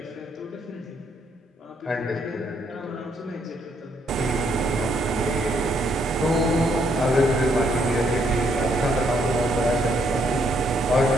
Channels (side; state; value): both; normal; correlation 0.72